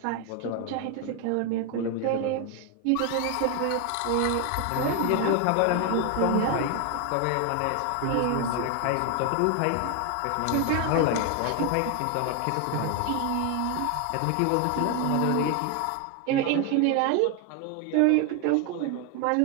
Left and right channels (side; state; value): both; different; correlation 0.01